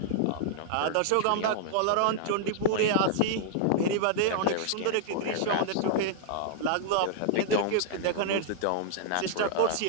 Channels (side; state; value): both; different; correlation -0.01